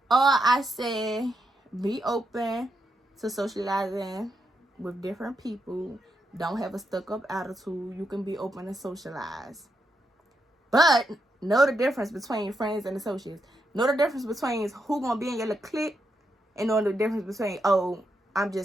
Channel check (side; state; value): both; normal; correlation 0.82